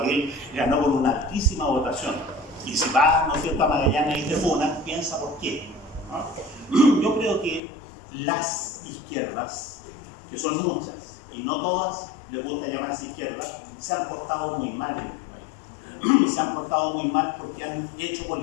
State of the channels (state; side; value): drops out; right; at 7.6 s